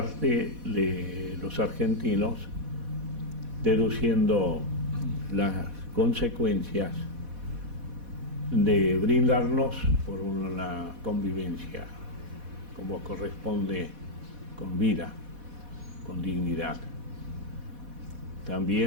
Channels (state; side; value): late; left; 4.1 ms